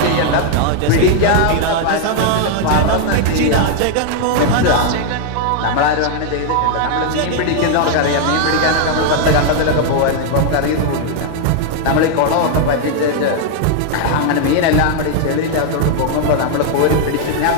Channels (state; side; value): different; both; correlation 0.00